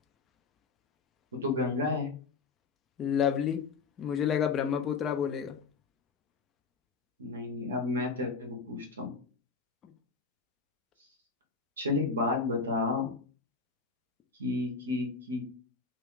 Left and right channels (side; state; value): right; quieter; 4.7 dB